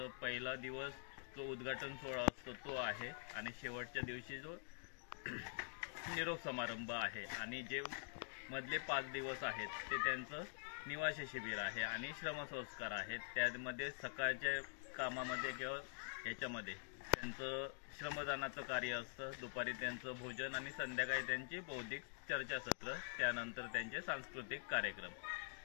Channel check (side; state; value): right; silent; digital silence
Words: पहिला दिवस जो उद्घाटन सोहळा असतो तो आहे, आणि शेवटच्या दिवशी जो निरोप समारंभ आहे, आणि जे मधले 5 दिवस आहेत ते त्यांचं निवासी शिबिर आहे आणि श्रमसंस्कार आहेत। त्यामध्ये सकाळच्या कामामध्ये किंवा याच्यामध्ये त्यांचं श्रमदानाचं कार्य असतं, दुपारी त्यांचं भोजन आणि संध्याकाळी त्यांची बौद्धिक चर्चासत्र, त्यानंतर त्यांचे सांस्कृतिक कार्यक्रम।